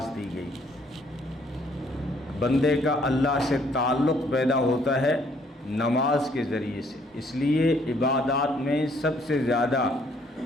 دی گئی۔ بندے کا اللہ سے تعلق پیدا ہوتا ہے نماز کے ذریعے سے، اس لیے عبادات میں سب سے زیادہ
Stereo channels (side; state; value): both; normal; correlation 0.65